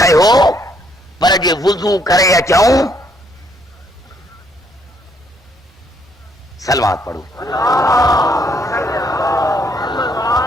पर जे वुज़ू करे अचूं। सलवात पढ़ो।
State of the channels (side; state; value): both; normal; correlation 0.70